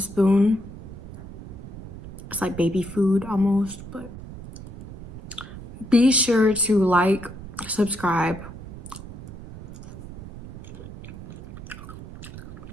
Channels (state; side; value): noise; right; rumble, 13 dB below the sound